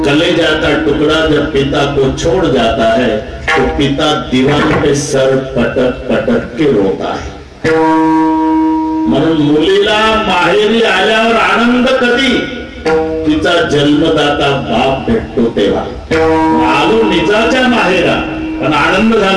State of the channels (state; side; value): identical; both; correlation 1.00